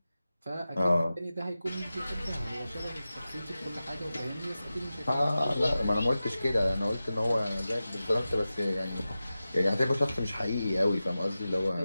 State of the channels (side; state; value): both; inverted; correlation -0.94